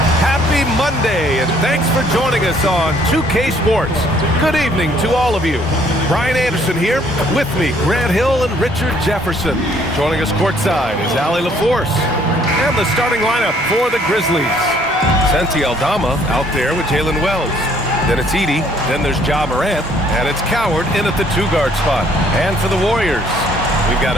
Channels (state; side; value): normal; both; correlation 0.62